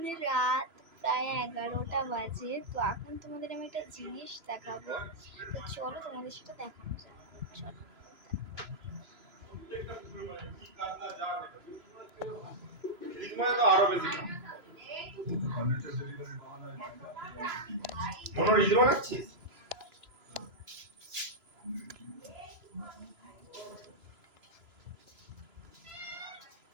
রাত প্রায় 11টা বাজে। তো এখন তোমাদের আমি একটা জিনিস দেখাবো। তো চলো তোমাদের সেটা দেখানো যাক। চলো।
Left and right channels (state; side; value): late; left; 3.0 ms